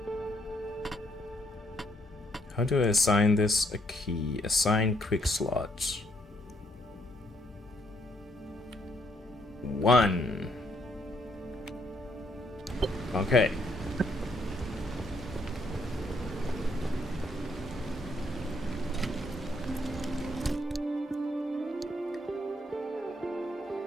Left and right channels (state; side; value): normal; both; correlation 0.71